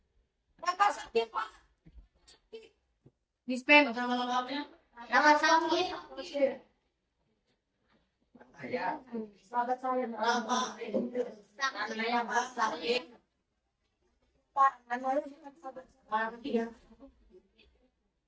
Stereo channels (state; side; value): identical; both; correlation 1.00